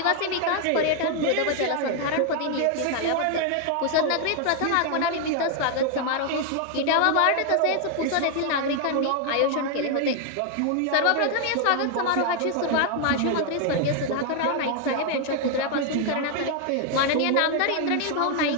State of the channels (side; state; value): both; different; correlation 0.00